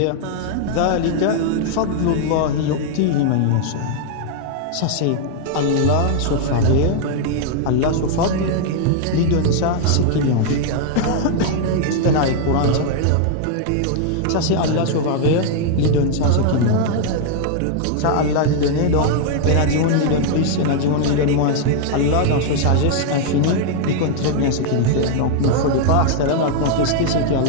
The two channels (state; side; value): different; both; correlation 0.00